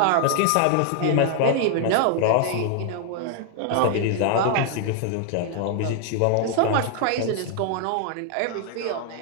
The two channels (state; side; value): different; both; correlation 0.00